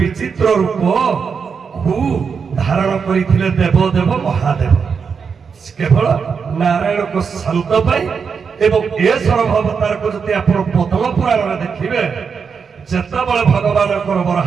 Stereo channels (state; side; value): quieter; left; 6.0 dB